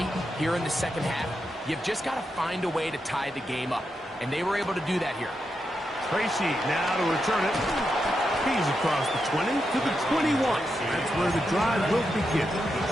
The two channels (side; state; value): both; normal; correlation 0.85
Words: here in the second half, you've just got to find a way to tie the game up. And they were able to do that here. Tracy now to return it. He's across the 20 to the 21. That's where the drive will begin.